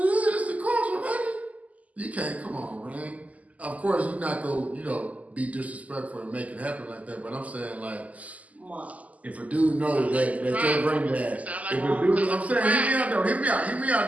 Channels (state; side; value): late; left; 0.073 ms